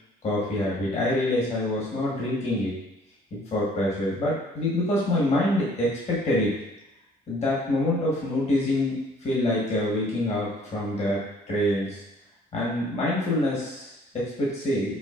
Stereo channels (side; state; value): both; normal; correlation 0.57